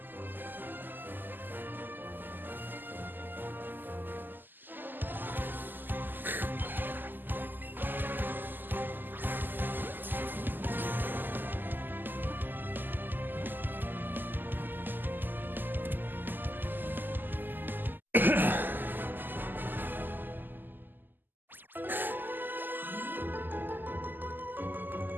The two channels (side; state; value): left; late; 0.090 ms